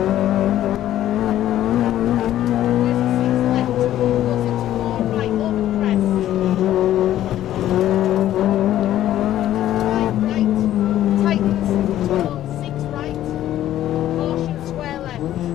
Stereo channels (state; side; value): quieter; right; 12.7 dB